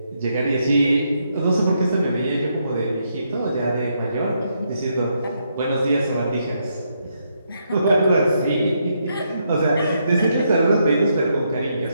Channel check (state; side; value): inverted; both; correlation -0.78